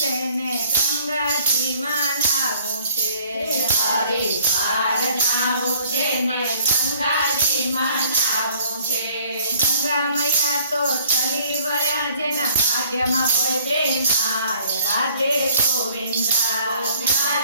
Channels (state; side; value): inverted; both; correlation -0.57